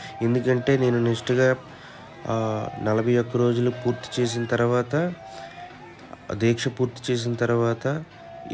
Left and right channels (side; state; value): both; identical; correlation 1.00